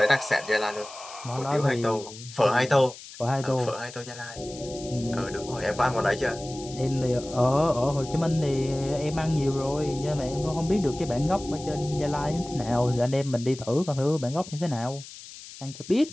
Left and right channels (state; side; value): noise; left; hiss, 15 dB below the sound